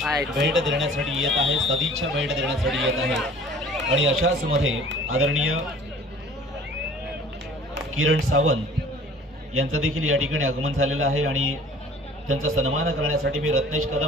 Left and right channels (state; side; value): normal; both; correlation 0.48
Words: भेट देण्यासाठी येत आहे, सदिच्छा भेट देण्यासाठी येत आहे. आणि अशाच मध्ये आदरणीय किरण सावंत यांचं देखील या ठिकाणी आगमन झालेलं आहे आणि त्यांचा सन्मान करण्यासाठी मी रत्नेश